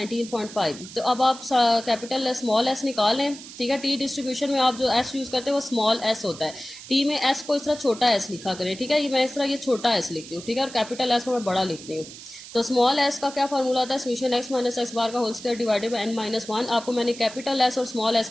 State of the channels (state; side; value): noise; right; hiss, 15 dB below the sound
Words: तो अब आप कैपिटल स्मॉल एस निकाल लें, ठीक है। टी डिस्ट्रीब्यूशन में आप जो एस यूज करते हैं वो स्मॉल एस होता है। टी में एस को इस तरह छोटा एस लिखा करें, ठीक है। ये मैं इस तरह ये छोटा एस लिखती हूँ, ठीक है, और कैपिटल एस को मैं बड़ा लिखती हूँ। तो स्मॉल एस का क्या फॉर्मूला होता है, summation X minus X bar का whole square divided by N -1। आपको मैंने कैपिटल एस और स्मॉल एस